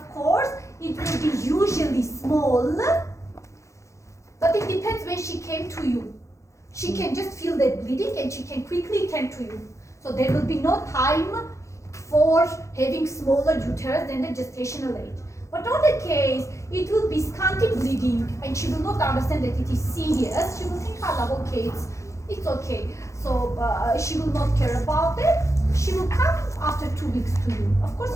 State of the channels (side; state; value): right; late; 0.15 ms